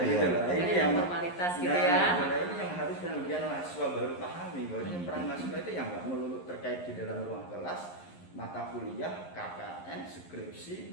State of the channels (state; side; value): late; right; 11 ms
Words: gitu loh. Ini yang formalitas gitu ya. Ini yang harus kemudian mahasiswa baru pahami bahwa peran mahasiswa itu yang nggak melulu terkait di dalam ruang kelas, mata kuliah, KKN, skripsi,